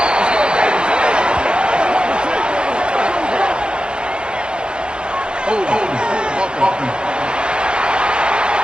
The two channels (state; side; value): late; left; 0.051 ms